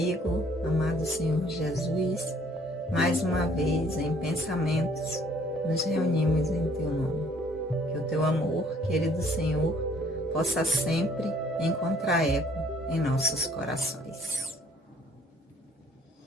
amado Senhor Jesus, mais uma vez em pensamentos nos reunimos em Teu nome. Que o Teu amor, querido Senhor, possa sempre encontrar eco em nossos corações.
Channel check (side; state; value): both; normal; correlation 0.60